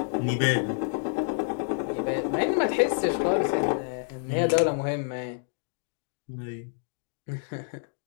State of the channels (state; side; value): silent; right; digital silence